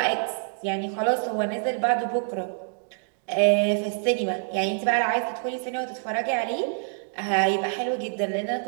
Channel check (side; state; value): left; silent; digital silence